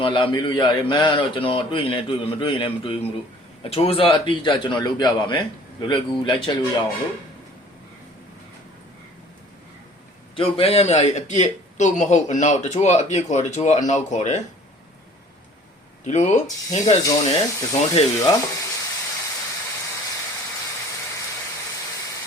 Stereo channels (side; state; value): both; normal; correlation 0.51